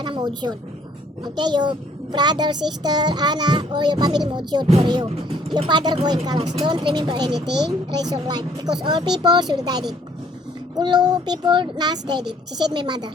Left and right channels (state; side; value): normal; both; correlation 0.61